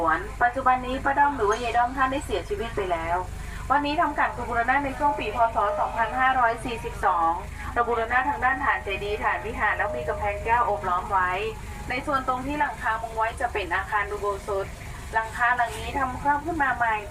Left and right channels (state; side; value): identical; both; correlation 1.00